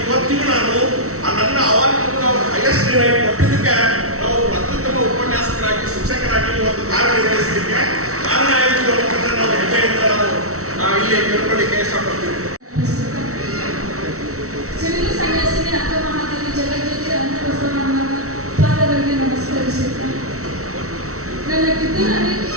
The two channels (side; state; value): left; late; 0.64 ms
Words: ಇವತ್ತಿಗೂ ನಾನು ನನ್ನ ಅವಾಗ ಹೈಯೆಸ್ಟ್ ಡಿರೈಟ್ ಕೊಟ್ಟಿದ್ದಕ್ಕೆ ನಾವು ಅತ್ಯುತ್ತಮ ಉಪನ್ಯಾಸಕರಾಗಿ ಶಿಕ್ಷಕರಾಗಿ ಇವತ್ತು ಕಾರ್ಯನಿರ್ವಹಿಸಲಿಕ್ಕೆ ಕಾರಣ ಆಯಿತು ಅನ್ನೋದನ್ನು ನಾವು ಹೆಮ್ಮೆಯಿಂದ ನಾವು ಇಲ್ಲಿ ತಿಳ್ಕೊಳ್ಳಿಕ್ಕೆ ಇಷ್ಟಪಡ್ತೀವಿ. ಸಿವಿಲ್ ಸನ್ಯಾಸಿನಿ ಅಕ್ಕ ಮಹಾದೇವಿ ಜಗಜ್ಯೋತಿ ಅನ್ನಬಸವಣ್ಣನ ಪಾದಗಳಿಗೆ ನಮಸ್ಕರಿಸುತ್ತೇನೆ. ನನ್ನ ಕಿತ್ತೂರಲ್ಲಿ